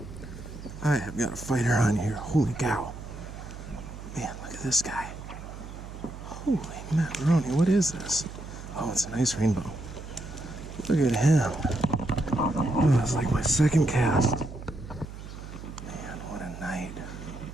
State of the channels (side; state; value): right; noise; hum, 12 dB below the sound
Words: I have got a fighter on here. Holy cow. Man, look at this guy. Holy macaroni, what is this? Oh, it's a nice rainbow. Look at him. Oh, it's like my second cast. Man, what a night.